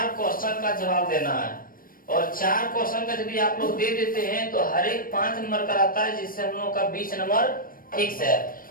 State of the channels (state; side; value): late; right; 0.41 ms